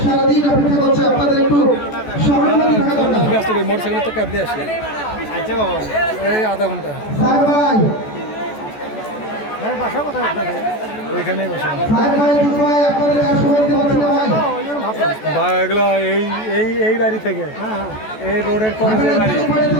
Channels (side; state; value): right; late; 14 ms